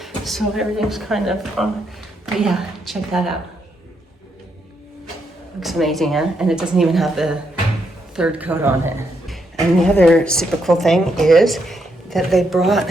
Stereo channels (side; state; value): both; normal; correlation 0.78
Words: So everything's kind of but yeah, check that out. Looks amazing, huh? And it doesn't even have the third coat on it. And the other super cool thing is that they brought